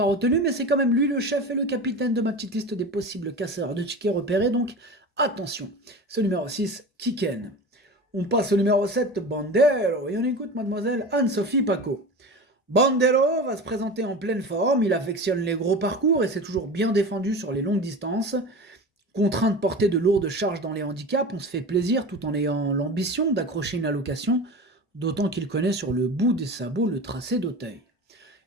retenu, mais c'est quand même lui le chef et le capitaine de ma petite liste des possibles casseurs de tickets repérés, donc attention. Ce numéro 6, Kiken. On passe au numéro 7, Bandero, et on écoute mademoiselle Anne-Sophie Paco. Bandero va se présenter en pleine forme, il affectionne les gros parcours et s'est toujours bien défendu sur les longues distances. Contraint de porter de lourdes charges dans les handicaps, on se fait plaisir tout en ayant l'ambition d'accrocher une allocation, d'autant qu'il connaît sur le bout des sabots le tracé d'Auteuil.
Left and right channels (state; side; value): normal; both; correlation 0.31